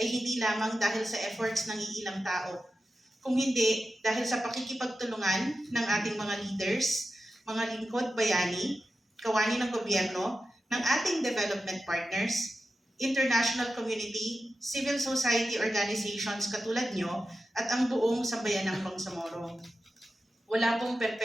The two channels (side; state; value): both; normal; correlation 0.92